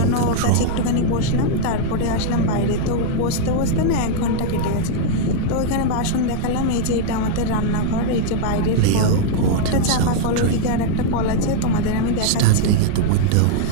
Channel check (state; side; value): different; both; correlation 0.00